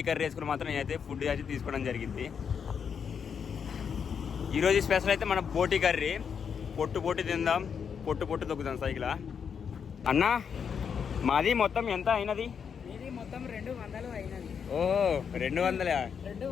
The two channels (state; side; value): quieter; right; 6.9 dB